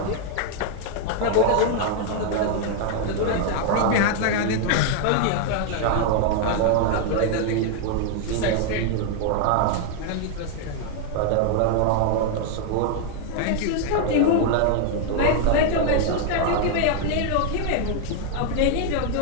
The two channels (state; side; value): different; both; correlation 0.00